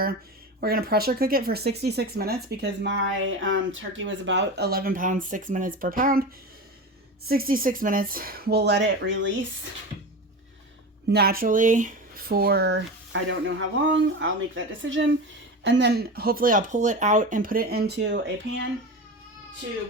We're going to pressure cook it for 66 minutes because my turkey was about 11 pounds, 6 minutes per pound. 66 minutes. We'll let it release naturally for I don't know how long. I'll make that decision. And then hopefully I'll pull it out and put it into a pan to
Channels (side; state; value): both; normal; correlation 0.26